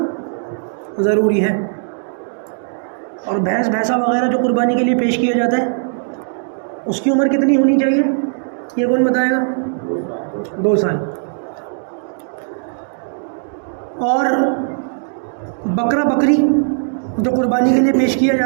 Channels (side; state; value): left; silent; digital silence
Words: ज़रूरी है। और भैंस भैंसा वगैरह जो कुर्बानी के लिए पेश किया जाता है उसकी उम्र कितनी होनी चाहिए, ये कौन बताएगा? 2 साल। और बकरा बकरी जो कुर्बानी के लिए पेश किया